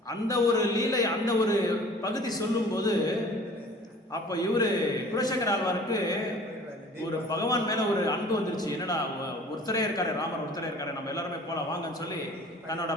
அந்த ஒரு லீலை, அந்த ஒரு பகுதி சொல்லும்போது அப்போ குலசேகர ஆழ்வாருக்கு ஒரு பகவான் மேலே ஒரு அன்பு வந்துருச்சு. என்னடா ஒருத்தரே இருக்காரு, ராமர் ஒருத்தரே இருக்காரு, நம்ம எல்லாருமே போகலாம் வாங்கன்னு சொல்லி தன்னோட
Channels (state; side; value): normal; both; correlation 0.48